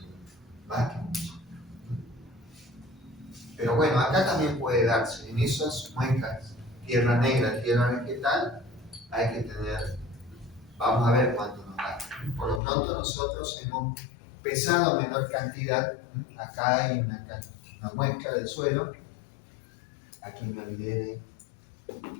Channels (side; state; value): right; drops out; at 12.6 s